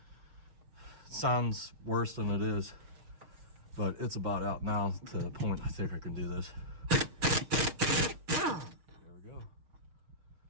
it sounds worse than it is. But it's about out now to the point I think I can do this. There we go.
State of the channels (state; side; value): late; left; 6.5 ms